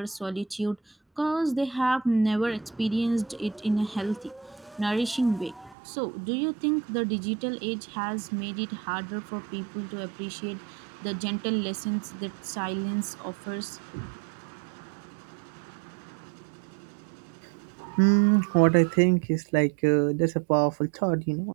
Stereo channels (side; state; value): left; drops out; at 5.8 s